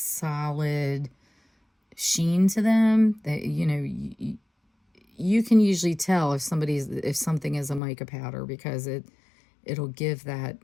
sheen to them that, you know, you can usually tell if something is a mica powder, because it'll give that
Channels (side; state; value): right; drops out; at 7.8 s